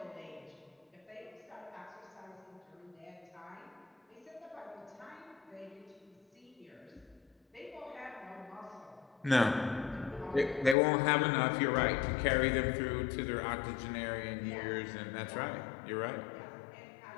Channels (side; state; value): right; drops out; at 10.8 s